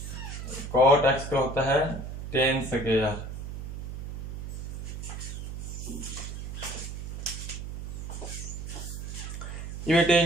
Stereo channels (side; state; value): right; noise; hum, 7 dB below the sound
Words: कॉट एक्स का होता है टेन स्क्वायर। ये बेटे